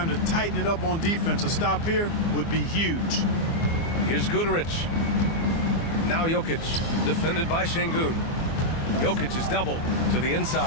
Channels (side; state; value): right; late; 24 ms